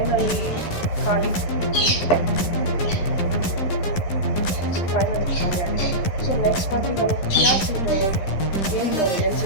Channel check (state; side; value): late; right; 11 ms